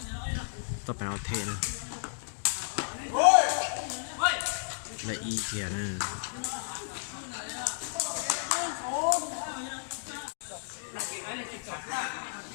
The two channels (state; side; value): silent; right; digital silence